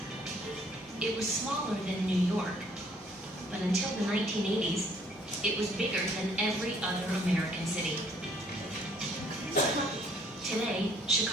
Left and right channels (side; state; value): both; normal; correlation 0.62